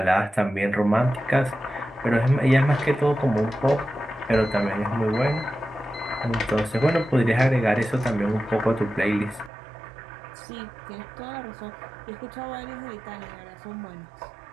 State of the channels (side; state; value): left; drops out; at 9.5 s